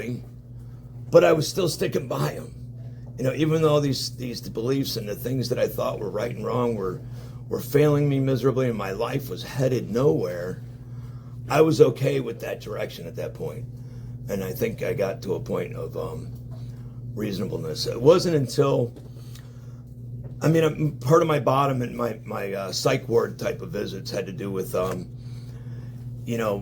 but I was still sticking by them. Even though these beliefs and the things that I thought were right and wrong were failing me miserably and my life was headed nowhere, I was okay with that direction at that point. And I think I got to a point of reasonableness. It wasn't until, part of my bottom and my psych ward type of visits had to do with,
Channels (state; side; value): identical; both; correlation 1.00